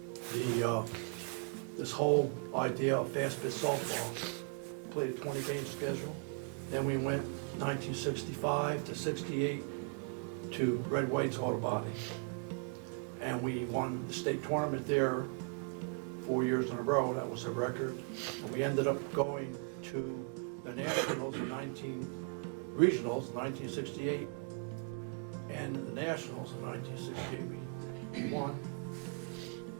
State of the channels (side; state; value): left; quieter; 38.2 dB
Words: this whole idea of fast pitch softball. Played a 20-game schedule. Then we went 1965 to 68 to Red White's Auto Body. And we won the state tournament there 4 years in a row. That was a record. And we ended up going to the Nationals in regionals in 1968 and the Nationals in 1968. We won,